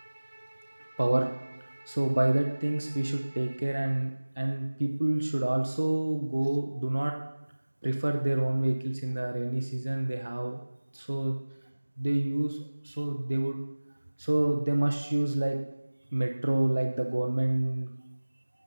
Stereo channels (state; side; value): inverted; both; correlation -1.00